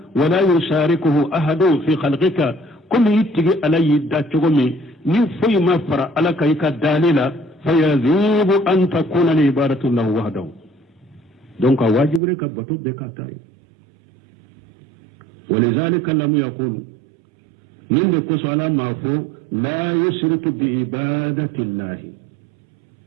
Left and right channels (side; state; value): left; drops out; at 12.2 s